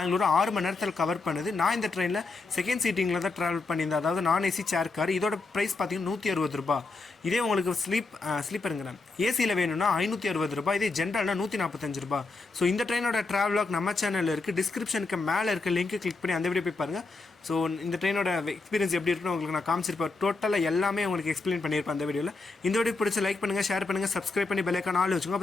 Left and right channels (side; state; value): right; quieter; 3.7 dB